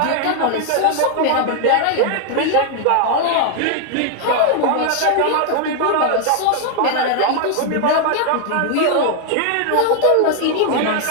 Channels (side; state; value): both; different; correlation 0.00